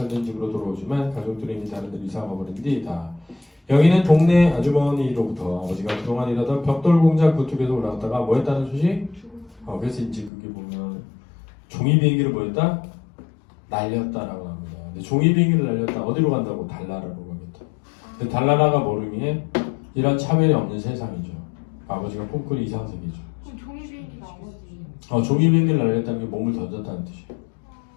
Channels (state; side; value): drops out; right; at 10.3 s